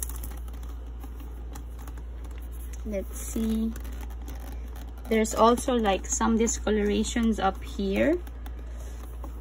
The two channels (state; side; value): identical; both; correlation 1.00